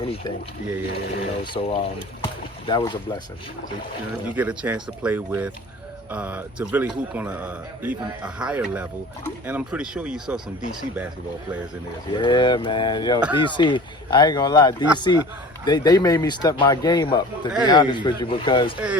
That was a blessing. So, you get a chance to play with, to really hoop on even a higher level, and I'm pretty sure you saw some DC basketball players in there as well. Yeah, man. DC, I ain't gonna lie, DC, they made me step my game up, to be honest with you, because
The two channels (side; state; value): both; normal; correlation 0.41